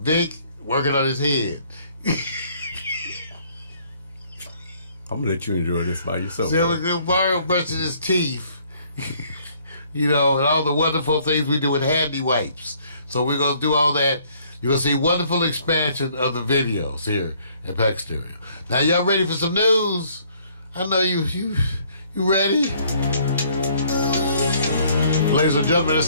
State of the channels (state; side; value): inverted; both; correlation -0.62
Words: working on his head. I'm gonna let you enjoy this by yourself. See, Mario brushing his teeth, and all the wonderful things we do with handy wipes. So we're gonna do all that. You're gonna see wonderful expansion of the videos here at Pax Stereo. Now y'all ready for some news? I know you ready? Ladies and gentlemen, it's